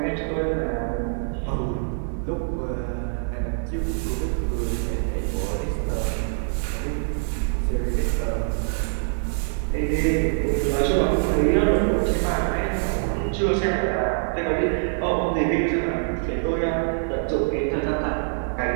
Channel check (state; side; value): silent; left; digital silence